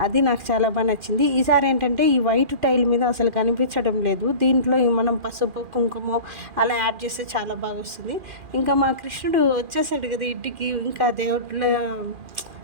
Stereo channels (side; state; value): left; late; 2.4 ms